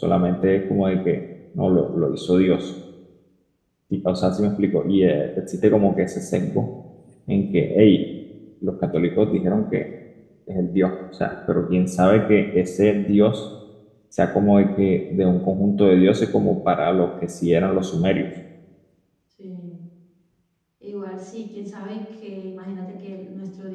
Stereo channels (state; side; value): identical; both; correlation 1.00